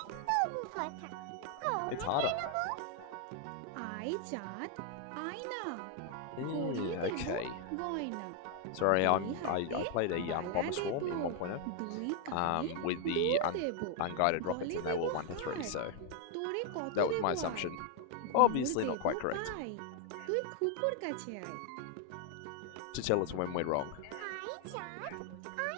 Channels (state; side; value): different; both; correlation 0.00